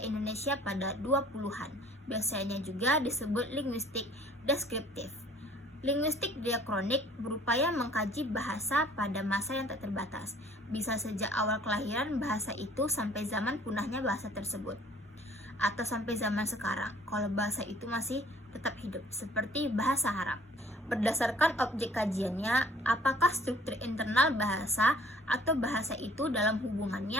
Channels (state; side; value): normal; both; correlation 0.55